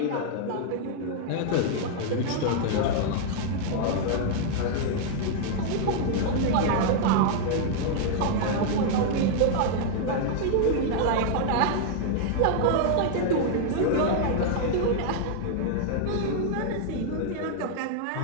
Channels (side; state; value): both; different; correlation -0.01